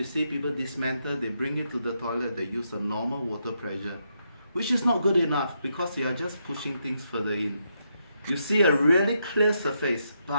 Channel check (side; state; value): both; inverted; correlation -0.80